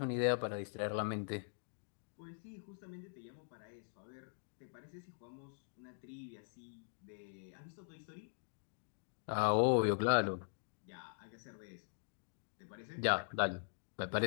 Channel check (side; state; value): right; silent; digital silence